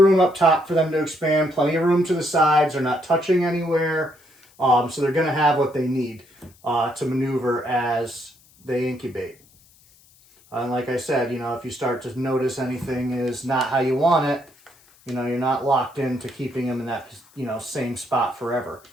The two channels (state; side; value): noise; left; hiss, 29 dB below the sound